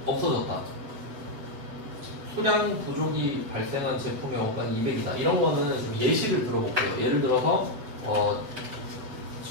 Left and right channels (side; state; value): left; late; 8.0 ms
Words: 없어졌다. 수량 부족이 발생한 제품의 원가는 200이다. 이런 거는 좀 예시를 들어볼게요. 예를 들어서